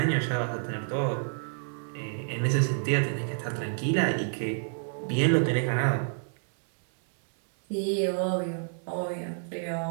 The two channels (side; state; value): left; silent; digital silence